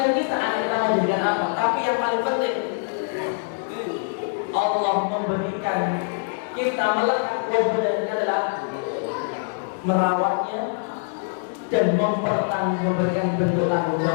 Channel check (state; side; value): silent; right; 63 dB below the other